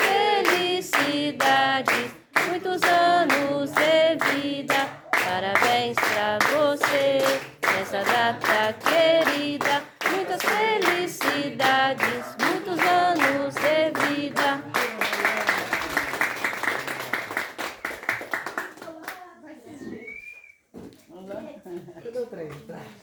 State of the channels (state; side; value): identical; both; correlation 1.00